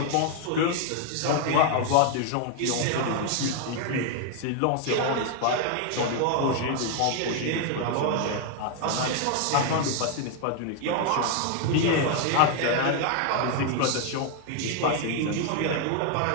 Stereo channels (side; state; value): both; different; correlation 0.00